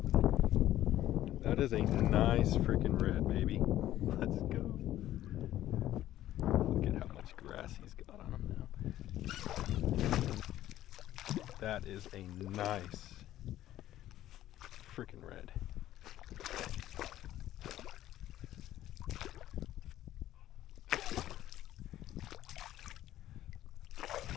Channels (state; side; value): quieter; right; 13.4 dB